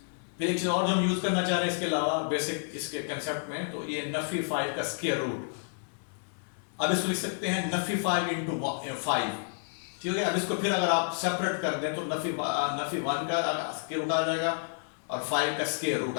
फिर एक चीज और जो हम यूज करना चाह रहे हैं इसके अलावा बेसिक इसके कंसेप्ट में, तो ये नफी 5 का स्क्वायर रूट। अब इसको लिख सकते हैं नफी 5 इंटू 5। ठीक है, अब इसको फिर अगर आप सेपरेट कर दें तो नफी 1 का स्क्वायर रूट आ जाएगा और 5 का स्क्वायर रूट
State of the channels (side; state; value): right; silent; 58 dB below the other